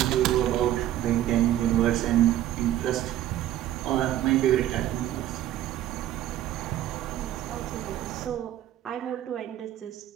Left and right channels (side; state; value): left; quieter; 12.8 dB